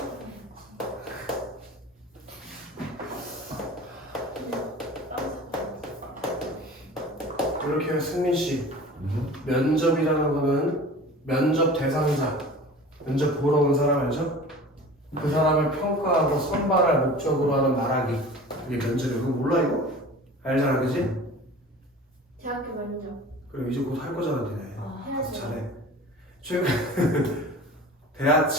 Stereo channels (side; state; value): both; normal; correlation 0.40